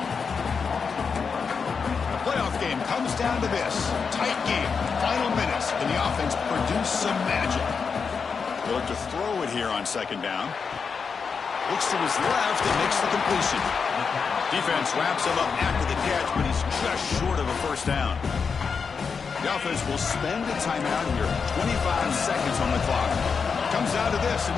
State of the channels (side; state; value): right; quieter; 5.6 dB